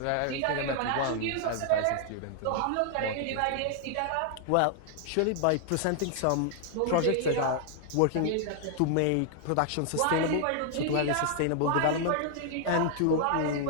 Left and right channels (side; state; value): both; different; correlation 0.00